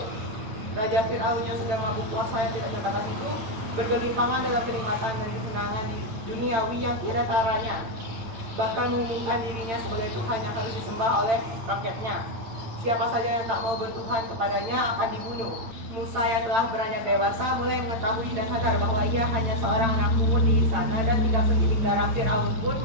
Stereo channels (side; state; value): left; late; 8.9 ms